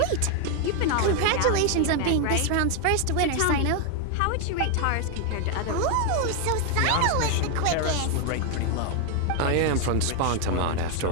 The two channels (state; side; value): different; both; correlation 0.01